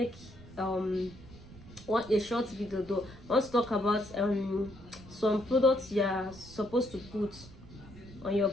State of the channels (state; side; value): noise; right; rumble, 18 dB below the sound